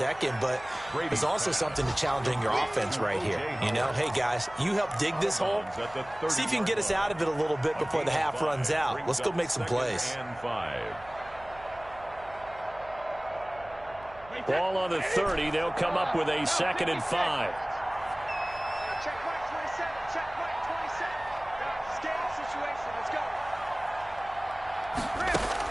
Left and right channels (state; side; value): noise; right; hum, 21 dB below the sound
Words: But there's also something to challenging your offense right here. You know, hey, guys, you help dig this hole. See if you can get us out of it a little bit before the half runs out. Let's go make some plays. Ball on the 30. They'll come up with a 2nd and 5. Check right 27. Check right 27. Scanning situation. Let's go.